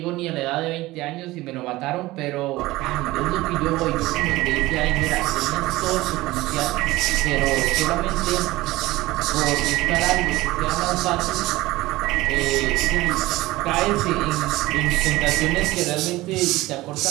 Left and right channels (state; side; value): quieter; left; 18.7 dB